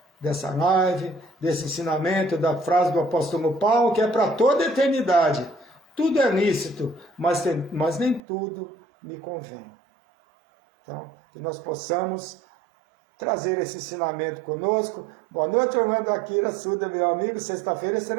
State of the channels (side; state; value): left; drops out; at 8.2 s